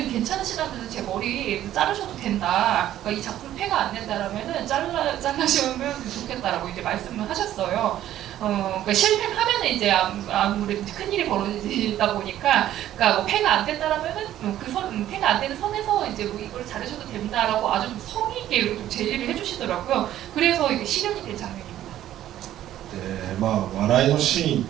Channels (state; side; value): quieter; left; 12.6 dB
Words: 괜찮으시다면 제 머리 자르셔도 된다. 그러니까 이 작품 폐가 안 된다라면은 잘라시면 좋겠다라고 이제 말씀을 하셨어요. 그러니까 실패하면은 이제 아무래도 큰일이 벌어지다 보니까, 그러니까 뭐 폐가 안 된다라면은 폐가 안 되는 선에서 이제 뭐 이걸 잘하셔도 된다라고 아주 좀 성의 있게 좀 제의를 해주시더라고요. 그래서 이게 실현이 된 장면입니다. 笑いのシーンっ